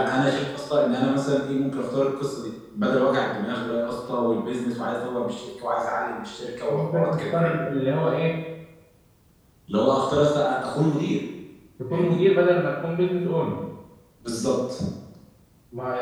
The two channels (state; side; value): identical; both; correlation 1.00